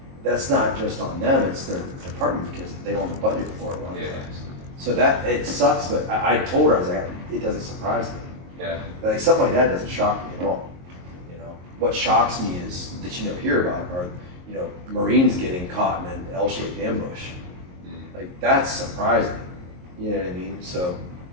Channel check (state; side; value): late; left; 22 ms